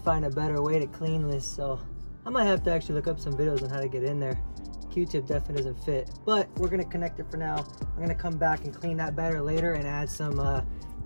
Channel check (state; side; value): inverted; both; correlation -1.00